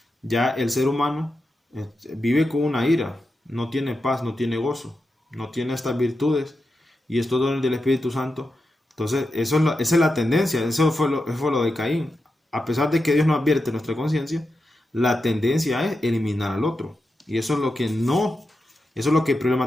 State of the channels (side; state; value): both; normal; correlation 0.89